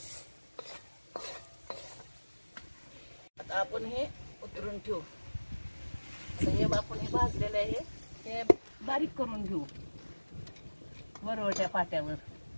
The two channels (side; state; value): both; inverted; correlation -1.00